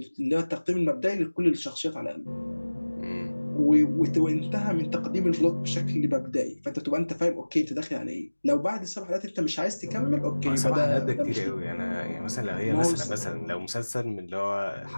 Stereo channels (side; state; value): both; inverted; correlation -1.00